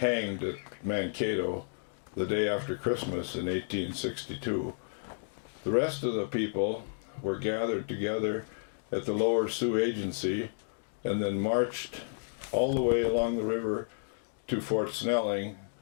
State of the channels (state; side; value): silent; right; digital silence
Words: at Mankato the day after Christmas in 1862. The rest of the people were gathered together at the Lower Sioux Agency and then marched all the way along the river to Fort Snelling